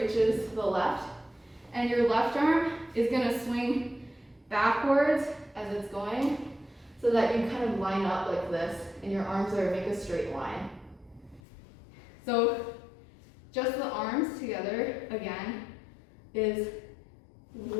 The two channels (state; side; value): drops out; right; at 11.4 s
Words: reaches the left, and your left arm is gonna swing backwards as it's going, so that you kind of line up like this, and your arms make a straight line. So just the arms together, again, is